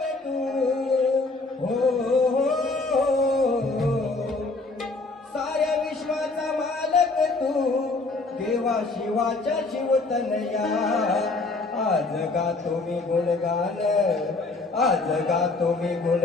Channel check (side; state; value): right; quieter; 3.5 dB